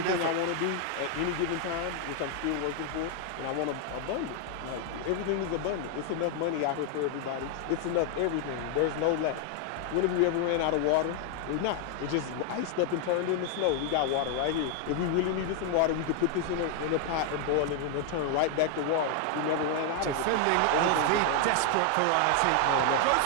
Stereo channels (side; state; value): both; different; correlation 0.00